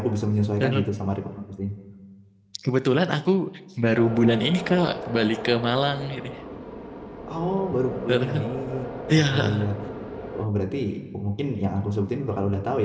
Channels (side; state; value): both; identical; correlation 1.00